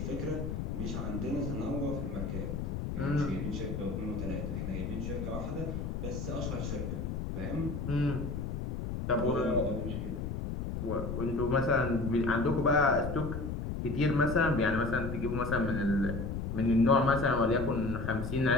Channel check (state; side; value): noise; left; rumble, 4 dB below the sound